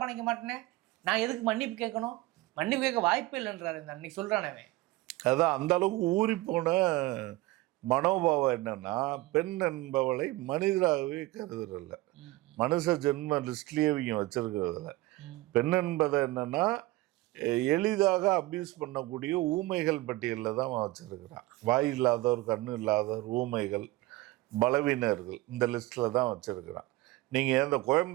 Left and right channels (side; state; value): left; quieter; 19.3 dB